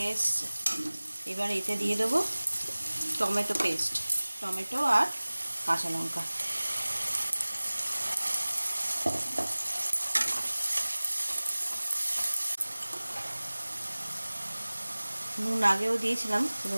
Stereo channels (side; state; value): both; inverted; correlation -1.00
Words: এসছে। এবার এতে দিয়ে দেবো টমেটো পেস্ট, টমেটো আর কাঁচা লঙ্কা। নুন আগেও দিয়েছিলাম,